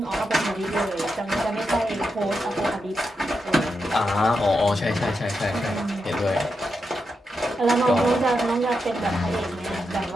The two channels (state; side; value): normal; both; correlation 0.86